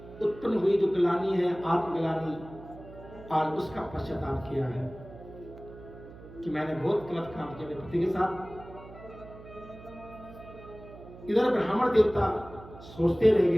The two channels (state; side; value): noise; right; hum, 17 dB below the sound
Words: उत्पन्न हुई जो ग्लानि है, आत्मग्लानि, आज उसका पश्चाताप किया है कि मैंने बहुत गलत काम किया अपने पति के साथ। इधर ब्राह्मण देवता सोचते रह